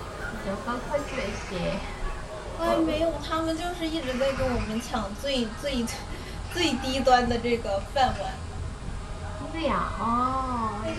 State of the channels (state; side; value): identical; both; correlation 1.00